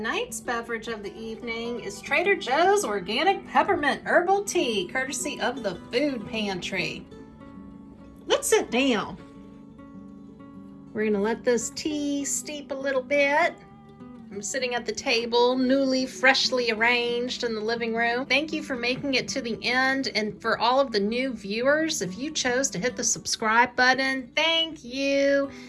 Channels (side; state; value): both; identical; correlation 1.00